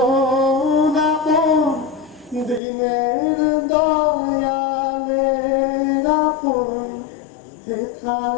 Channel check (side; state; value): right; drops out; at 2.6 s